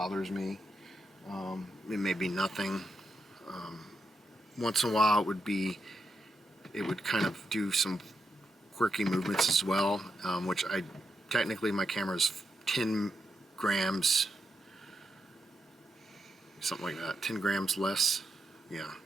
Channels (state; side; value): normal; both; correlation 0.83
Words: me. It may be nothing. Once in a while it would kind of do some quirky movements as well, which technically my camera's 10 grams, something like that, 10 grams less. Yeah,